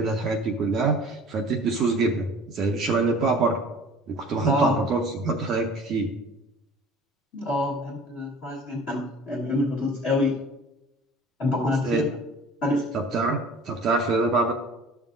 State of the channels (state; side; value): normal; both; correlation 0.46